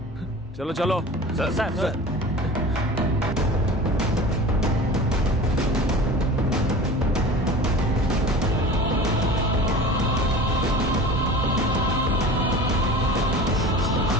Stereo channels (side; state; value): both; normal; correlation 0.37